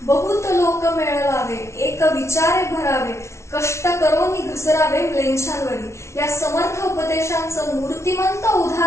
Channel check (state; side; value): late; right; 0.13 ms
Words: बहुत लोक मेळवावे एक विचारे भरावे कष्ट करोनी घसरावे म्लेच्छांवरी। या समर्थ उपदेशांचं मूर्तिमंत